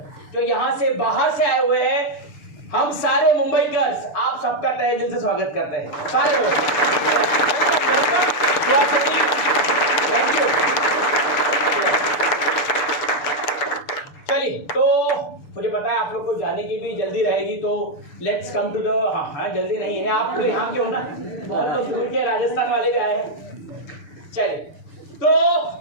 जो यहाँ से बाहर से आए हुए हैं, हम सारे मुंबईकर्स आप सबका तहे दिल से स्वागत करते हैं, सारे लोग। Thank you. चलिए, तो मुझे पता है आप लोग को जाने की भी जल्दी रहेगी, तो लेट्स कम टू द हाँ जल्दी नहीं है, आप तो यहाँ के हो ना, बहुत तो दूर के राजस्थान वाले भी आए हैं। चलिए, तो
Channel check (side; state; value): right; late; 6.6 ms